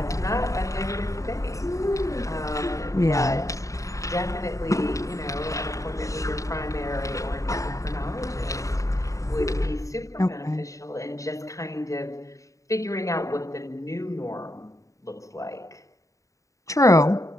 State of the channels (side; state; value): right; late; 0.16 ms